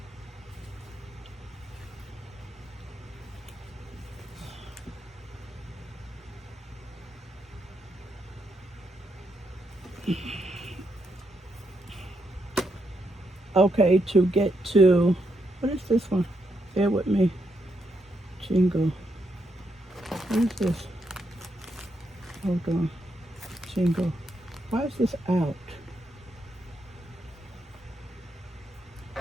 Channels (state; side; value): normal; both; correlation 0.80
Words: Okay, to get to, what is this one? Bear with me. Jingle. What is this? Hold on. Jingle. Why is this out?